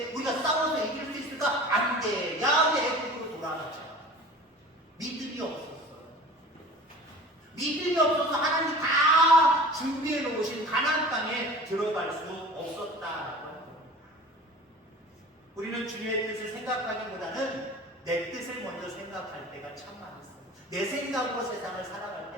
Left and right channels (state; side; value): normal; both; correlation 0.40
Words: 우리가 싸워서 이길 수 있을까? 안 돼. 야외 애국으로 돌아가자. 믿음이 없었어요. 믿음이 없어서 하나님이 다 준비해 놓으신 가나안 땅에 들어갈 수 없었다라고 하는 겁니다. 우리는 주님의 뜻을 생각하기보다는 내 뜻을 먼저 생각할 때가 참 많았어요. 내 생각으로 세상을 살아갈